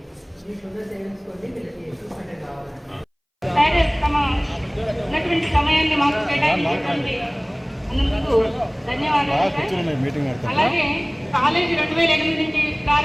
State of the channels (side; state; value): both; identical; correlation 1.00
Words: ఉన్నటువంటి సమయాన్ని మాకు కేటాయించినటువంటి అందుకు ధన్యవాదాలు. అలాగే కాలేజీ 2008 నుంచి